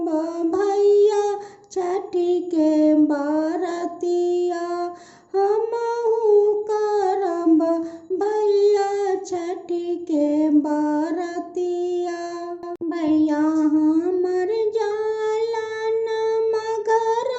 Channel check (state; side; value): identical; both; correlation 1.00